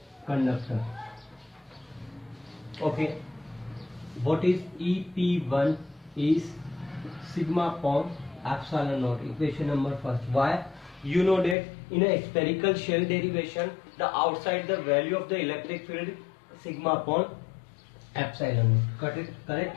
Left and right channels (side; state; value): right; drops out; at 11.6 s